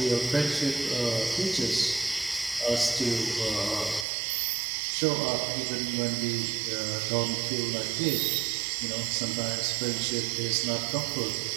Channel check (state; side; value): drops out; left; at 4.0 s